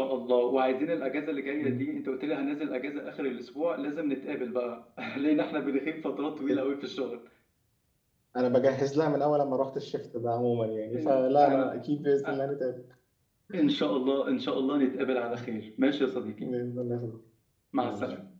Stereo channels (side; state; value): both; identical; correlation 1.00